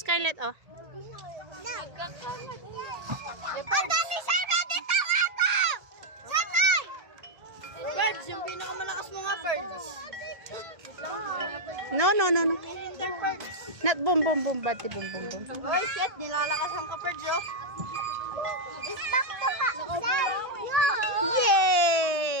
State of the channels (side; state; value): left; late; 1.8 ms